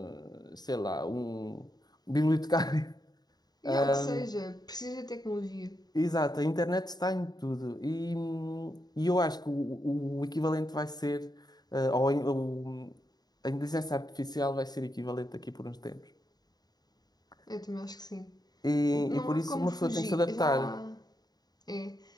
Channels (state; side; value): late; right; 0.19 ms